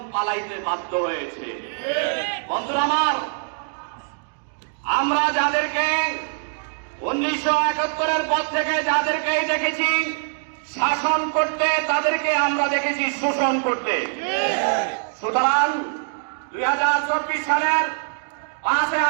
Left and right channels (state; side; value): silent; left; digital silence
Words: পালাইতে বাধ্য হয়েছে। বন্ধুরা আমার, আমরা যাদেরকে 1971-এর পর থেকে যাদেরকে দেখেছি শাসন করতে, তাদেরকে আমরা দেখেছি শোষণ করতে। সুতরাং 2024 সালের 5